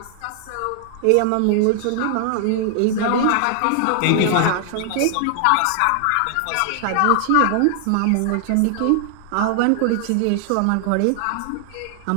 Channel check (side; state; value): both; different; correlation 0.00